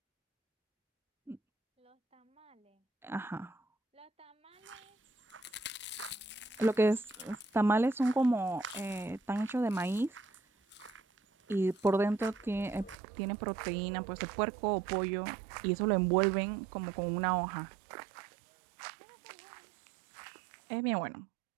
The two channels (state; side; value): drops out; left; at 13.0 s